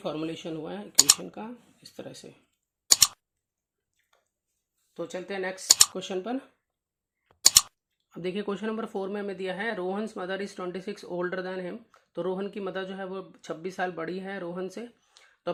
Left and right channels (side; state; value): both; identical; correlation 1.00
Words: हुआ है इक्वेशन का, इस तरह से। तो चलते हैं नेक्स्ट क्वेश्चन पर। अब देखिए क्वेश्चन नंबर 4 में हमें दिया है Rohan's mother is 26 older than him. तो रोहन की मदर जो है वो 26 साल बड़ी है रोहन से। The